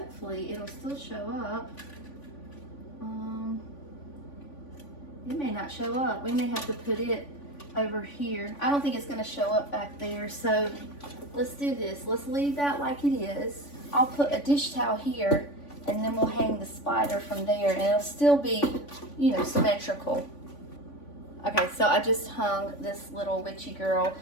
it'll still show up. It may not show up. We may have to put it over here. I don't think it's gonna show up back there, so let's do this. Let's leave that like it is. I'll put a dish towel here, and then we'll hang the spider from there, and it'll still be, you know, symmetrical. Okay, so I just hung this little witchy girl.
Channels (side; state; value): right; late; 3.5 ms